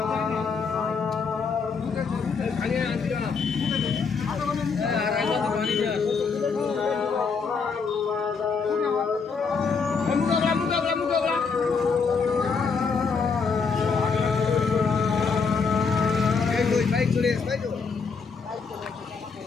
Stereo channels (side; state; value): right; quieter; 5.2 dB